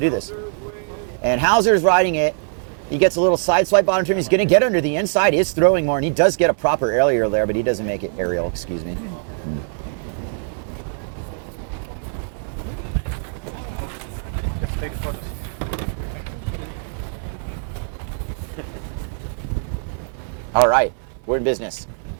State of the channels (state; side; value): silent; left; 62 dB below the other